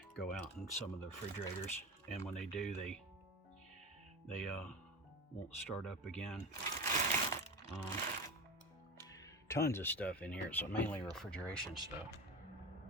go out in some of the refrigerators, and when they do, they won't start up again. Tons of stuff in here, so mainly refrigeration stuff.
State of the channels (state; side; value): normal; both; correlation 0.26